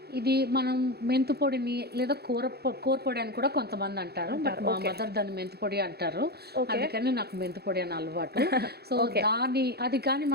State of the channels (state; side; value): late; left; 0.47 ms